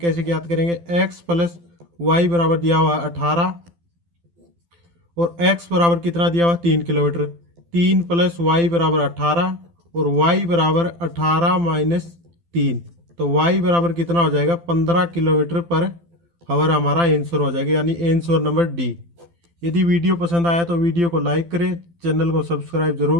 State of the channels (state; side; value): late; left; 12 ms